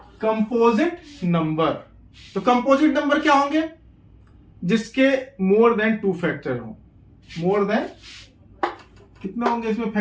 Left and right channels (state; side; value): identical; both; correlation 1.00